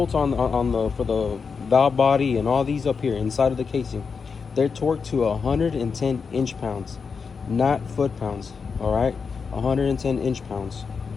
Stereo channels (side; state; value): right; quieter; 5.5 dB